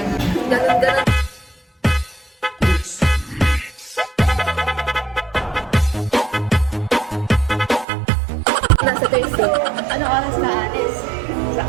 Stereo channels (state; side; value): drops out; left; at 7.9 s